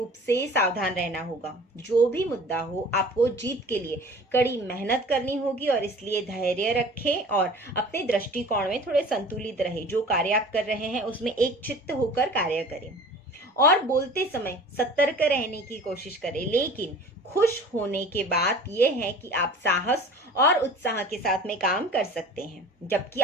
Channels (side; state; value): both; normal; correlation 0.42